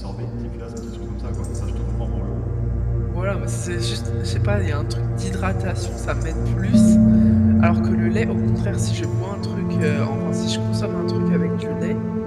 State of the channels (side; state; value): both; identical; correlation 1.00